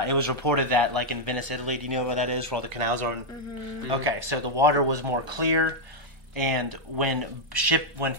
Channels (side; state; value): left; late; 1.1 ms